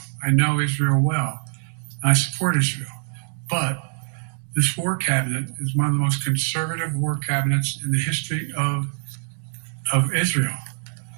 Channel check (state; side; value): silent; left; digital silence